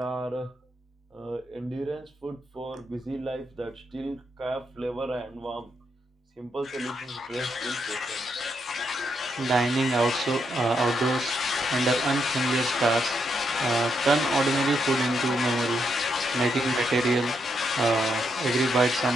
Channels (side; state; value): both; normal; correlation 0.79